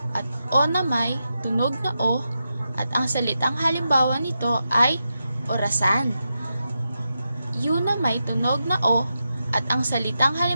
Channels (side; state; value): both; inverted; correlation -0.88